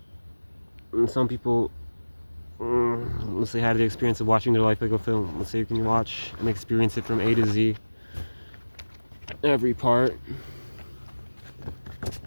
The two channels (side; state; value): both; inverted; correlation -1.00